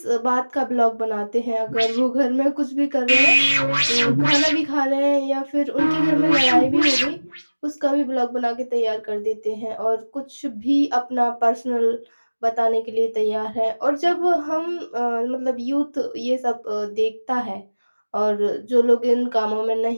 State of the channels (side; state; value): both; inverted; correlation -1.00